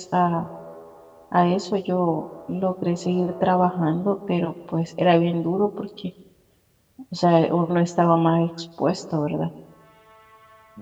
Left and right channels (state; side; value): identical; both; correlation 1.00